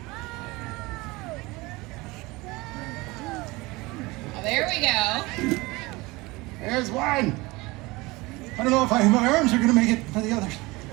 Oh, there we go. There's one. I don't know if my arms are going to make it for the others.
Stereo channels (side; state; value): left; quieter; 22.6 dB